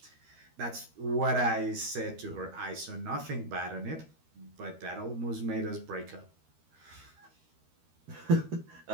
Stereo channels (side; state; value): left; late; 13 ms